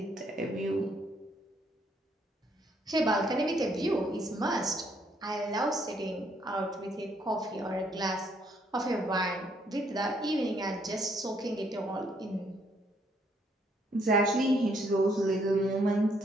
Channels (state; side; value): normal; both; correlation 0.70